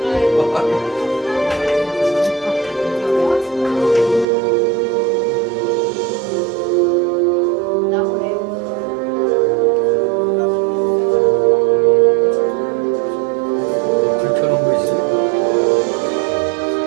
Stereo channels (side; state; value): left; drops out; at 4.2 s